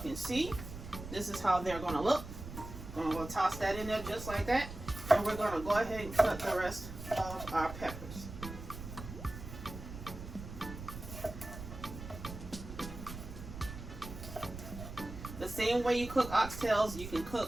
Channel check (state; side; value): noise; right; rumble, 10 dB below the sound